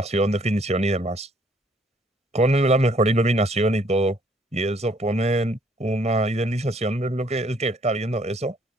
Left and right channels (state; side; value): normal; both; correlation 0.64